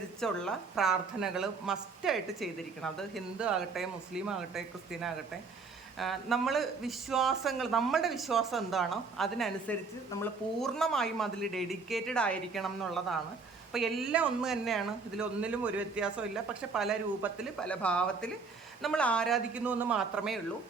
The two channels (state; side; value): quieter; left; 4.6 dB